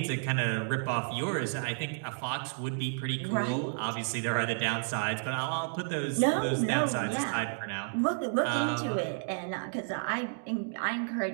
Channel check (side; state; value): left; silent; digital silence